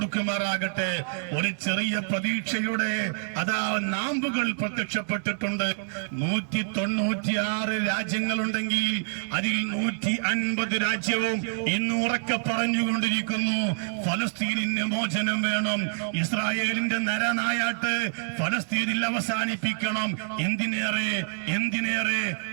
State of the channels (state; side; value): silent; left; digital silence